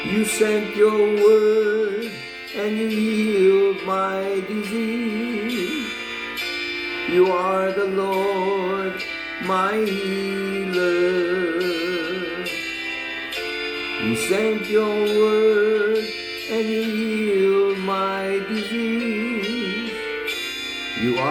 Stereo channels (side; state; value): both; identical; correlation 1.00